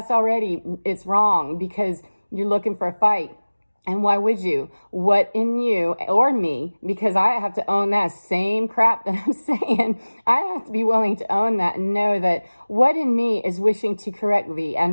wrong, because you're looking for a fight. And why would you? What in you or me? Because I have to own that same crap that I'm saying. I have to be willing to own that and know that what in me is wishing to correct thee,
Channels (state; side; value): inverted; both; correlation -1.00